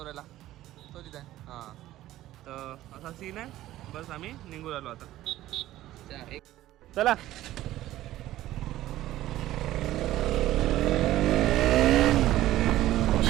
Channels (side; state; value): left; quieter; 14.7 dB